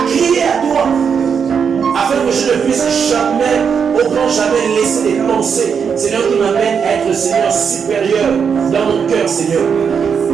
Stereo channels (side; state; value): left; quieter; 6.6 dB